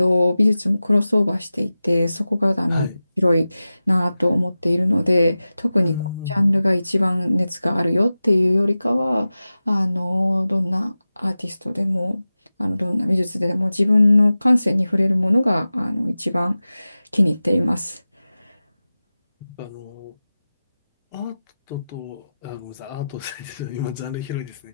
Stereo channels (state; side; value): inverted; both; correlation -0.95